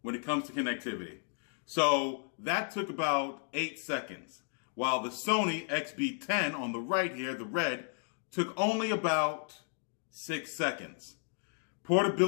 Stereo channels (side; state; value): right; silent; 55 dB below the other